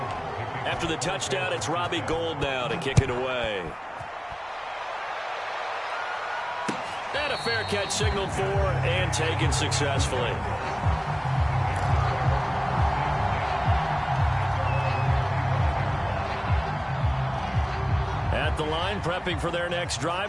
After the touchdown, it's Robbie Gould now to kick it away. And a fair catch signaled for and taken successfully. At the line, prepping for their next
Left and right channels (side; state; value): both; identical; correlation 1.00